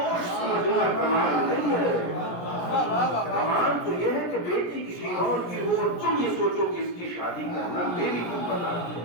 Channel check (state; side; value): late; right; 17 ms